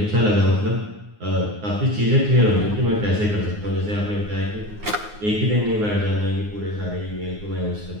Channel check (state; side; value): late; left; 9.6 ms